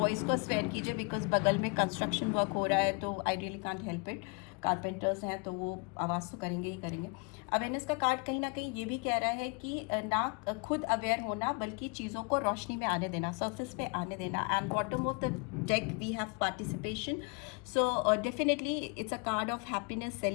को स्वेयर कीजिए, बिकॉज बगल में कंस्ट्रक्शन वर्क हो रहा है, तो I really can't help it. Carpenters हैं तो वो आवाज़ तो करेंगे ही करेंगे। अवेयरनेस का कार्ड कहीं ना कहीं ये भी कह रहा है कि ना खुद अवेयर होना, बल्कि चीज़ों को रोशनी में आने देना, सरफेस पे आने देना। And bottom of the deck we have participation. So definitely it's a card of happiness,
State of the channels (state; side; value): quieter; right; 33.0 dB